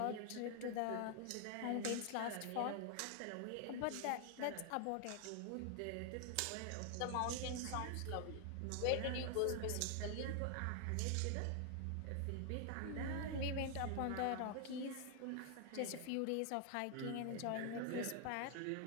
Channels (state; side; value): different; both; correlation 0.00